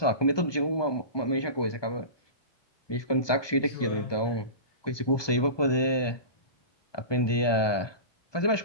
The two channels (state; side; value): late; right; 1.2 ms